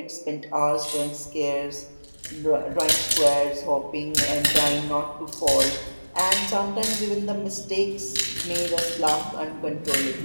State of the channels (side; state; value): both; inverted; correlation -1.00